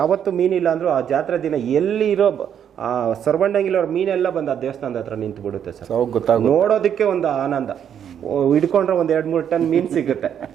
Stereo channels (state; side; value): quieter; left; 8.9 dB